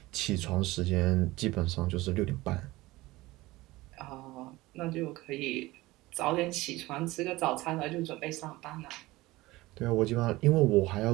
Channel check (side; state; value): left; quieter; 19.4 dB